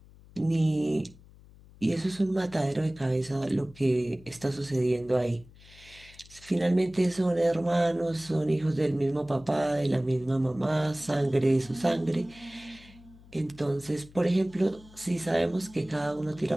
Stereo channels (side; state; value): left; noise; hum, 23 dB below the sound